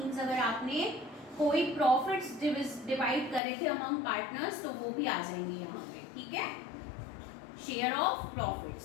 अगर आपने कोई प्रॉफिट्स डिवाइड करे थे अमंग पार्टनर्स तो वो भी आ जाएंगे यहाँ पे, ठीक है। Share of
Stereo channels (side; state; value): right; drops out; at 3.4 s